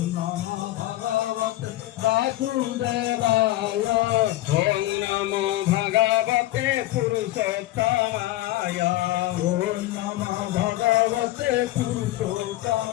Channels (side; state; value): right; quieter; 16.2 dB